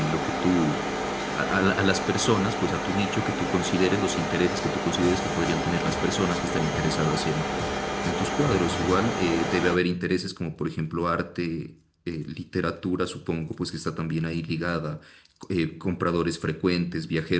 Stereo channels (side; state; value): both; identical; correlation 1.00